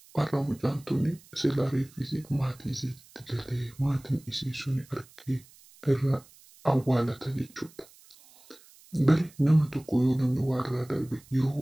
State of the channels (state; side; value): noise; right; hiss, 25 dB below the sound